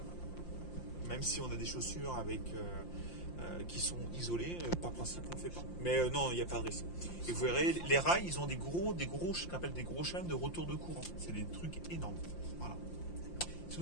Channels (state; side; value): late; right; 5.7 ms